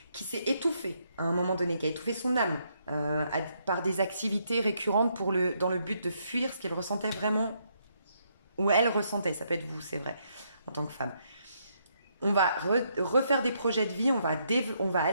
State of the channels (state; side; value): inverted; both; correlation -0.75